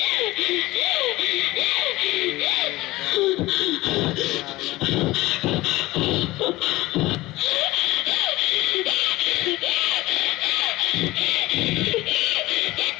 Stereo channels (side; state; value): right; quieter; 19.0 dB